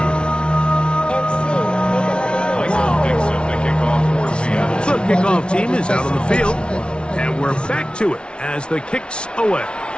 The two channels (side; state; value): right; late; 0.057 ms